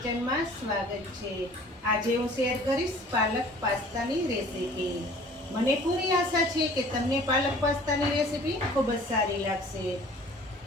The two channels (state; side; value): normal; both; correlation 0.49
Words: સ્વાગત છે। આજે હું શેર કરીશ પાલક પાસ્તાની રેસીપી। મને પૂરી આશા છે કે તમને પાલક પાસ્તાની રેસીપી ખૂબ જ સારી લાગશે